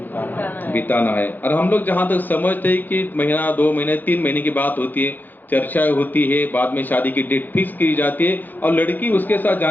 बिताना है। और हम लोग जहां तक समझते हैं कि महीना, 2 महीने, 3 महीने की बात होती है, चर्चाएं होती है, बाद में शादी की डेट फिक्स की जाती है, और लड़की उसके साथ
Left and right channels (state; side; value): late; right; 0.086 ms